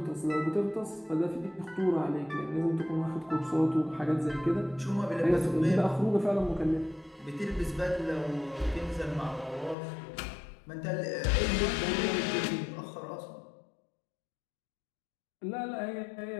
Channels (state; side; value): drops out; right; at 9.8 s